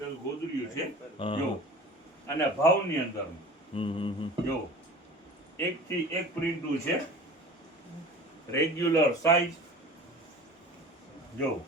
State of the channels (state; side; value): normal; both; correlation 0.39